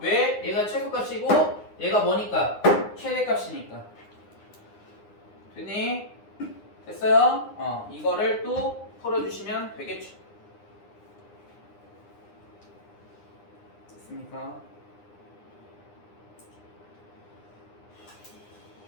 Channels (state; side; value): late; right; 9.8 ms